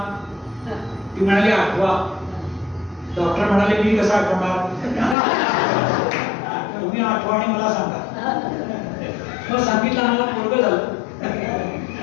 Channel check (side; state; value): right; drops out; at 5.2 s